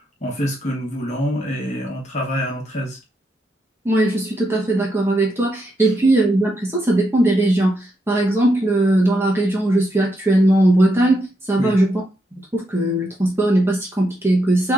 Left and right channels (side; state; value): both; normal; correlation 0.81